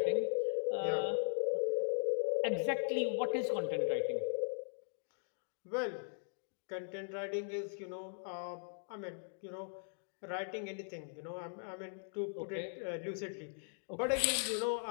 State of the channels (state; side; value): silent; right; digital silence